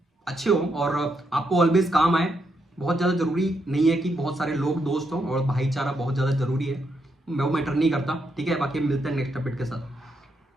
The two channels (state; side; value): normal; both; correlation 0.79